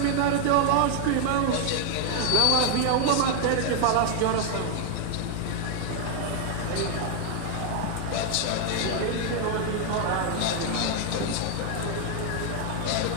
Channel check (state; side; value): different; both; correlation 0.00